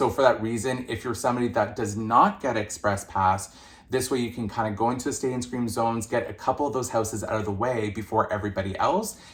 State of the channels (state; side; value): identical; both; correlation 1.00